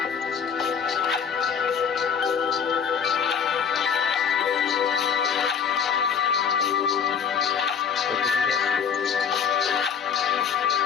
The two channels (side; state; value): right; quieter; 7.0 dB